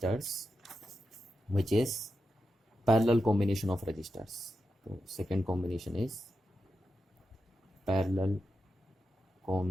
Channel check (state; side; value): normal; both; correlation 0.89